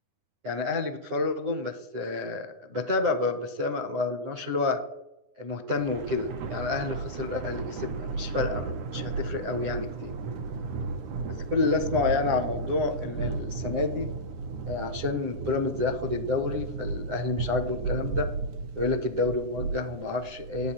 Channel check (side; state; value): left; late; 9.8 ms